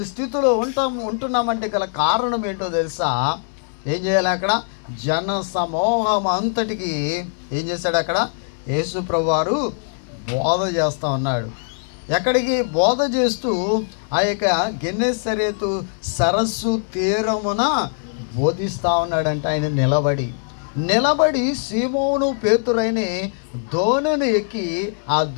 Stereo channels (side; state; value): right; silent; digital silence